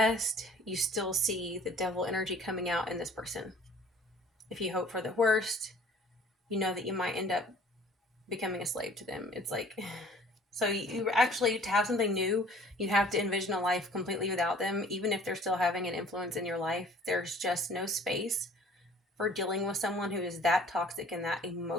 you still see the devil energy coming out in this person. If you hope for the worst, you know that you might end up becoming a slave to them. It's like, so you actually, to have something new, you have to envision a life completely without them. Even if they're still having an influence in your life, there's just no space for dealing with someone who is that toxic and that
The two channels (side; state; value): both; normal; correlation 0.52